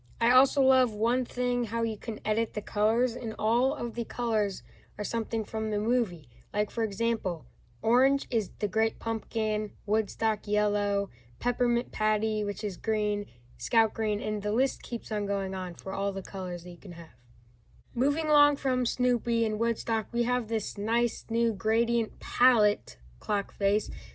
I also love one thing, how you can edit the colors, and all of the colors are something from the movie. Like, for example, orange is the Great Pumpkin, Woodstock yellow, Peppermint Patty, which is green, Scout green, and the list keeps on going on for all the colors that you can have. Moving along from Snoopy and Woodstock, we have this nice new gradient palette clock face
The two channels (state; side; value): identical; both; correlation 1.00